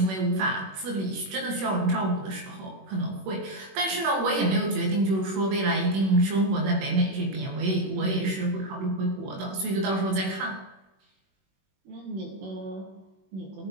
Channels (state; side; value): late; left; 21 ms